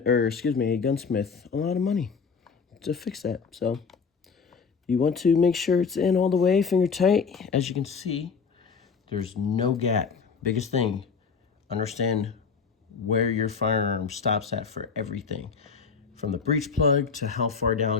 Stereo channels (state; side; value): quieter; right; 5.6 dB